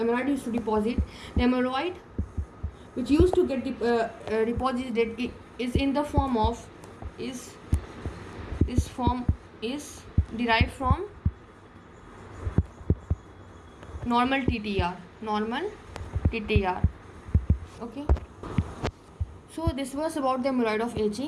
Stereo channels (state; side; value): identical; both; correlation 1.00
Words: used to deposit. The amyloid which used to get deposited is in the form of is derived from normal TTR. Okay, so this was about the amyloid of